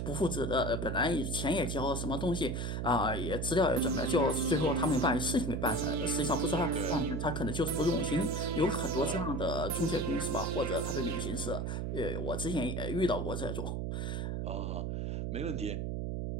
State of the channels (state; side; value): noise; right; hum, 2 dB below the sound